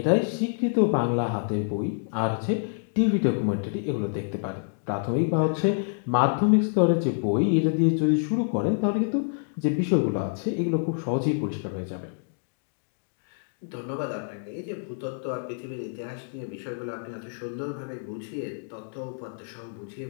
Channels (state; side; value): silent; right; digital silence